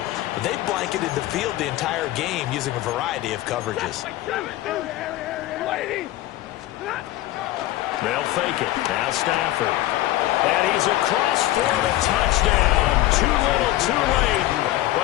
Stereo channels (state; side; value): quieter; right; 15.8 dB